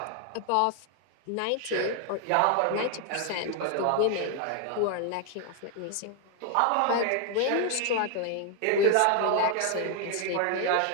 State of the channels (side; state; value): both; different; correlation 0.00